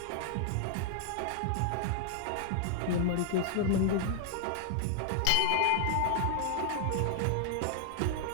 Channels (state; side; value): different; both; correlation 0.00